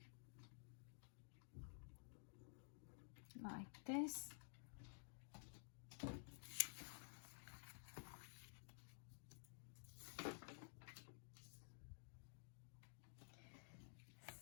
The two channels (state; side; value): silent; right; digital silence